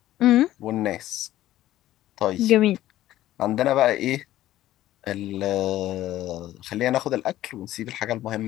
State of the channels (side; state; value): right; quieter; 14.2 dB